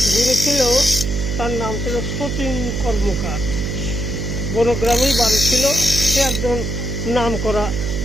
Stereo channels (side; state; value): right; noise; hum, 2 dB below the sound